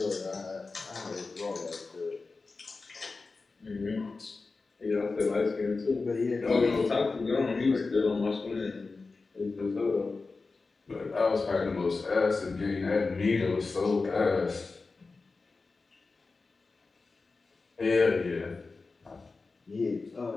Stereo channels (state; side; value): quieter; right; 4.0 dB